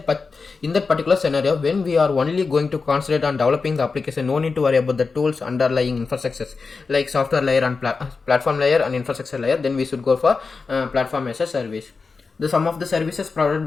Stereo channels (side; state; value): right; quieter; 4.5 dB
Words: particular scenario. When we are only going to concentrate on developing the application, no need to worry about the tools underlying infrastructures like software layer and platform layer and infrastructure layer. Then we should go for platform as a service. The sum of the services provided